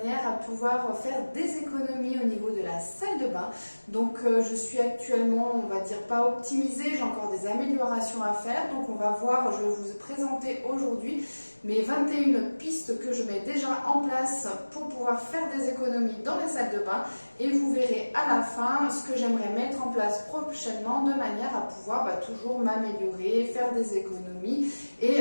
à pouvoir faire des économies au niveau de la salle de bain. Donc, je suis actuellement, on va dire, pas optimisée, j'ai encore des améliorations à faire. Donc, on va voir, je vais vous présenter aujourd'hui mes 21 pistes que je mets déjà en place pour pouvoir faire des économies dans la salle de bain. Et vous verrez à la fin ce que j'aimerais mettre en place prochainement de manière à pouvoir toujours m'améliorer, faire des économies.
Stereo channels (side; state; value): both; inverted; correlation -1.00